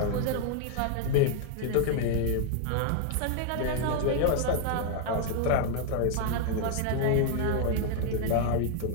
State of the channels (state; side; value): different; both; correlation -0.01